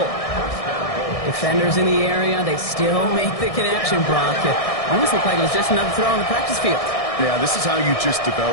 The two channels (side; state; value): right; late; 1.6 ms